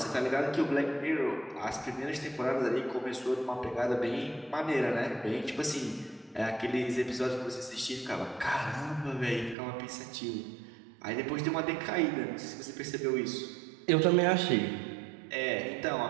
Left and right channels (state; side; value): drops out; left; at 9.6 s